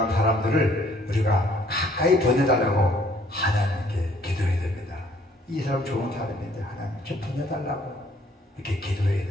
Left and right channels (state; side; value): normal; both; correlation 0.62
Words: 사람들을 우리가 가까이 보내달라고 하나님께 기도해야 됩니다. 이 사람 좋은 사람인데 하나님 좀 보내달라고 이렇게 기도해야